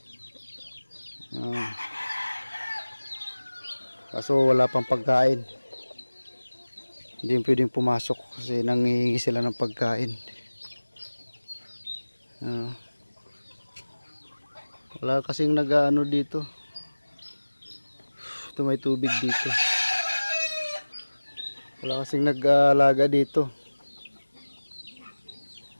Kaso wala pang pagkain. Hindi pwedeng pumasok kasi nangihingi sila ng pagkain. Wala kasing nag-ano dito. Ito may tubig dito. Wala kasing nag-alaga dito.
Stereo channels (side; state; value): both; inverted; correlation -1.00